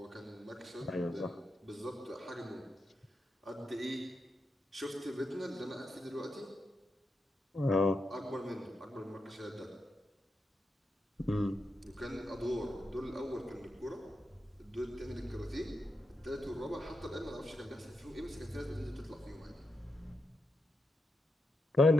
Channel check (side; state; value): both; normal; correlation 0.86